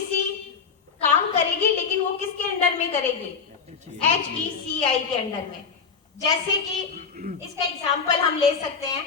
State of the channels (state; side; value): quieter; right; 5.7 dB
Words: काम करेगी लेकिन वो किसके अंडर में करेगी, HECI के अंडर में। जैसे कि इसका एग्जांपल हम ले सकते हैं